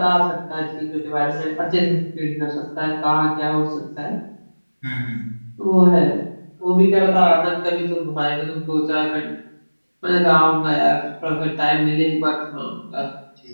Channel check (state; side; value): inverted; both; correlation -1.00